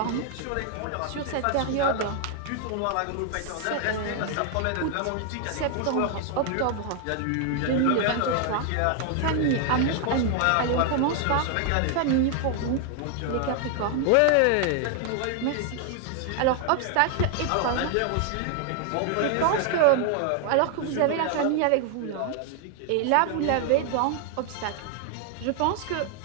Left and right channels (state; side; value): different; both; correlation 0.00